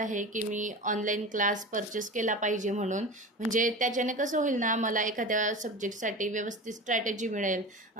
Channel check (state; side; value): normal; both; correlation 0.31